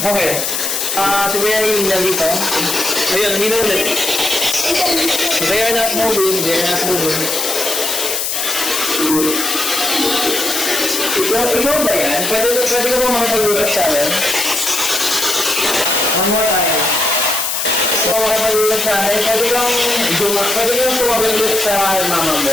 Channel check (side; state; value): left; noise; hiss, 1 dB below the sound